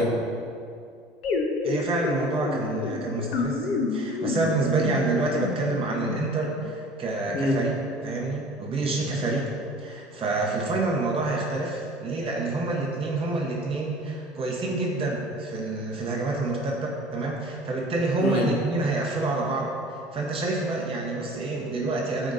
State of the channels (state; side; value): normal; both; correlation 0.45